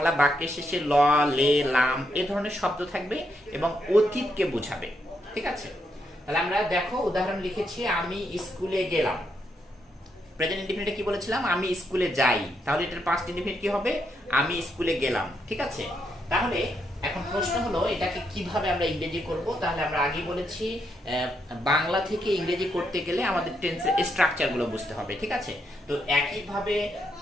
বাক্যের শেষে ল, লে, লাম এ ধরনের শব্দ থাকবে এবং অতীতকে বোঝাবে। ঠিক আছে? তাহলে আমরা দেখো উদাহরণ লিখেছি, আমি স্কুলে গেলাম। প্রেজেন্ট ইনডিফিনিটে কি বলেছিলাম? আমি স্কুলে যাই। তাহলে এটার পাস্ট ইনডিফিনিট কি হবে? আমি স্কুলে গেলাম। ঠিক আছে? তাহলে এখন প্রশ্ন হলো এটাকে কিভাবে আমরা ইংরেজি করব। তাহলে আমরা আগে বলেছি বাংলা থেকে ইংরেজি করতে গেলে আমাদের টেন্সের স্ট্রাকচারগুলো বুঝতে হবে। ঠিক আছে? তো একইভাবে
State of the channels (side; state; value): both; normal; correlation 0.79